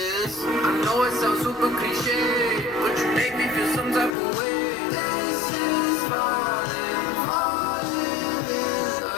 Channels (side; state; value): right; drops out; at 4.1 s